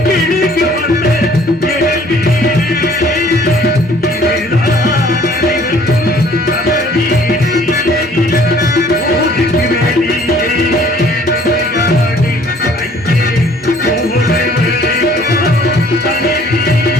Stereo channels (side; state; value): both; normal; correlation 0.56